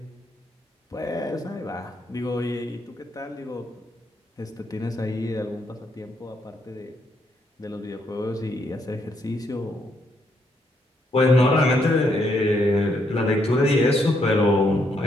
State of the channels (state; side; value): normal; both; correlation 0.75